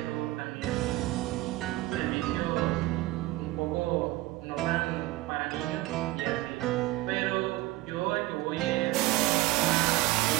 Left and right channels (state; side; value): quieter; left; 17.9 dB